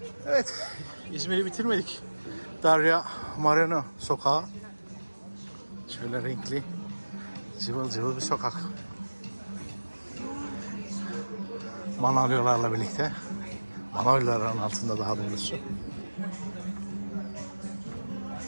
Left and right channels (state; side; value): inverted; both; correlation -1.00